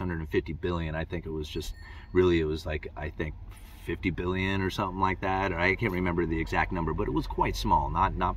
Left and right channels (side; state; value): both; identical; correlation 1.00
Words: billion. I think it was just really, it was like, I think, 50 billion or something like that, or I can't remember the exact number, but it was quite small,